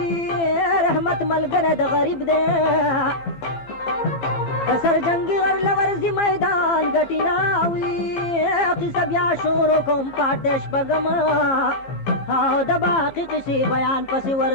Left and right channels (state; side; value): late; right; 15 ms